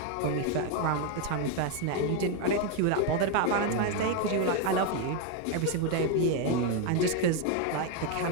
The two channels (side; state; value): both; different; correlation 0.01